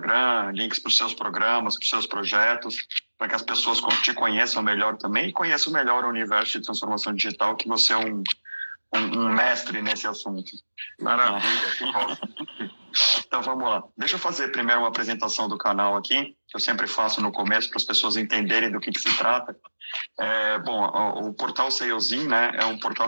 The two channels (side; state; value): both; inverted; correlation -1.00